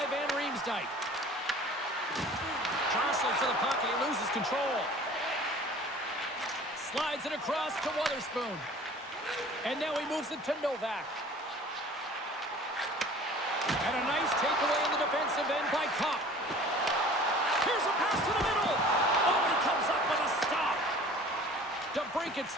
Van Riemsdyk. Jostling for the puck and he loses control. Slides it across to Wotherspoon. And now he moves it to Novak. And a nice takeaway in the defensive end by Kopp. Here's a pass to the middle. Oh, and he comes up with a stop. DeBrincat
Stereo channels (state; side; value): normal; both; correlation 0.46